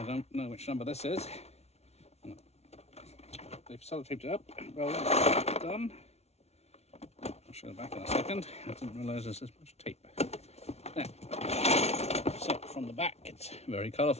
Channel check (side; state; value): right; late; 0.31 ms